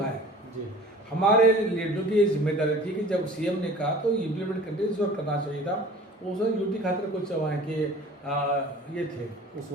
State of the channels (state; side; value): normal; both; correlation 0.44